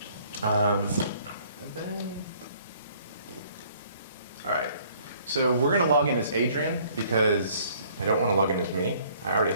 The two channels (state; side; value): inverted; both; correlation -0.59